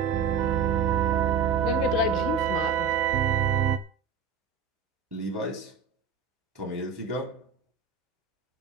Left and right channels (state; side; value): quieter; left; 5.8 dB